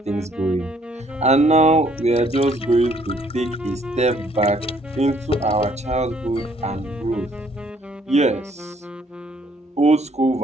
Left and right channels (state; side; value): normal; both; correlation 0.64